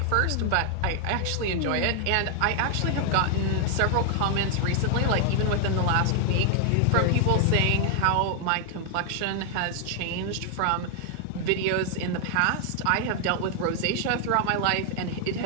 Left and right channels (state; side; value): different; both; correlation 0.00